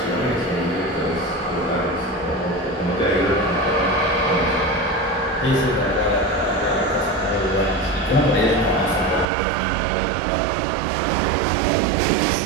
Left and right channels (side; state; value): left; drops out; at 9.2 s